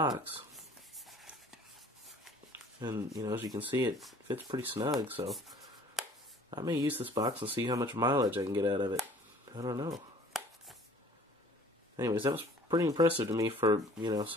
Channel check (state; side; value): normal; both; correlation 0.52